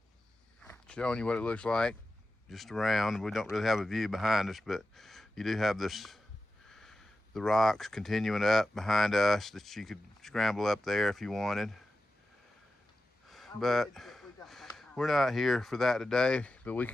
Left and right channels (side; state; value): both; normal; correlation 0.92